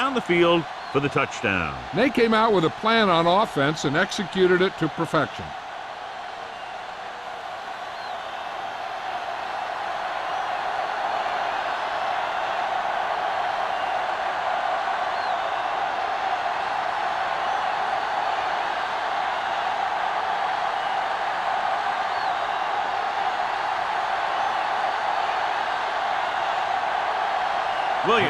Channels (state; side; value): identical; both; correlation 1.00